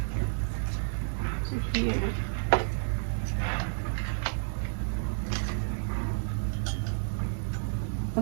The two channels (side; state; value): left; silent; digital silence